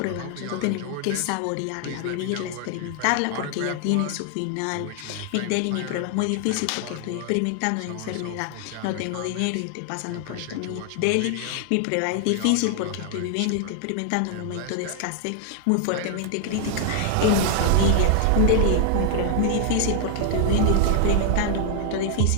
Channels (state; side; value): different; both; correlation 0.00